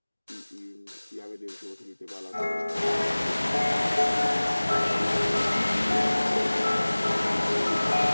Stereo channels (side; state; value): both; inverted; correlation -1.00